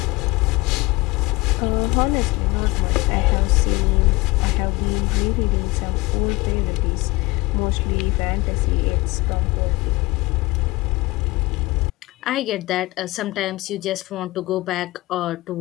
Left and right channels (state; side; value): quieter; right; 21.5 dB